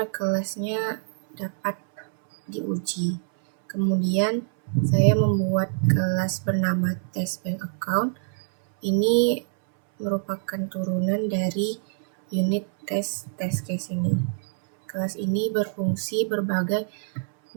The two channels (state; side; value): silent; left; 62 dB below the other